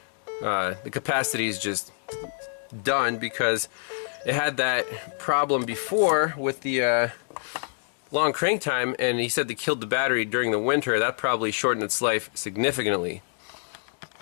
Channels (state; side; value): silent; right; digital silence